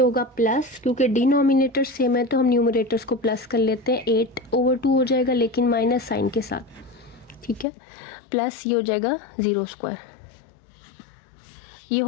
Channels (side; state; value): right; drops out; at 7.7 s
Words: प्लस, क्योंकि डिनोमिनेटर सेम है तो हम न्यूमरेटर्स को प्लस कर लेते हैं, 8/2 हो जाएगा लेकिन माइनस साइन के साथ, ठीक है। प्लस ये हो जाएगा 0 स्क्वायर, ये